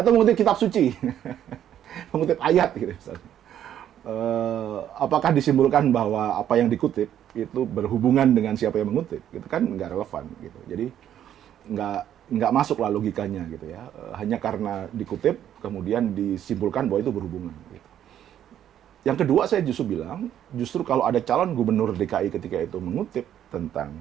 mengutip kitab suci, mengutip ayat gitu misalnya. Apakah disimpulkan bahwa apa yang dikutip itu berhubungan dengan siapa yang mengutip? Itu kan nggak relevan gitu. Jadi nggak masuk lah logikanya gitu ya. Hanya karena dikutip kemudian disimpulkan bahwa itu berhubungan. Gitu. Yang kedua saya justru bilang, justru kalau ada calon gubernur DKI ketika itu mengutip tentang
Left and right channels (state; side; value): quieter; left; 10.5 dB